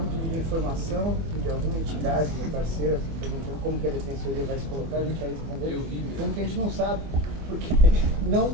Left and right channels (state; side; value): late; left; 24 ms